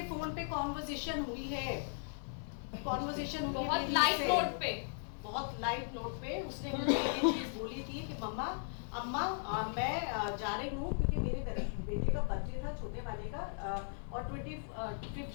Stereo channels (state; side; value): silent; right; digital silence